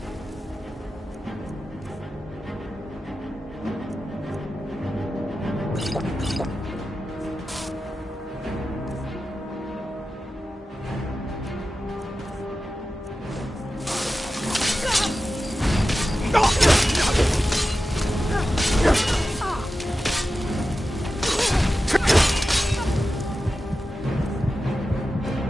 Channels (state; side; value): normal; both; correlation 0.93